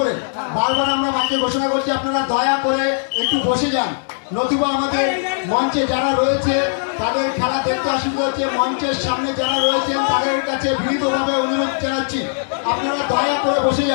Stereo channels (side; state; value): right; silent; digital silence